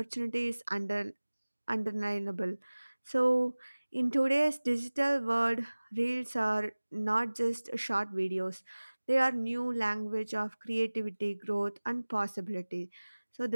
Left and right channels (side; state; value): both; inverted; correlation -1.00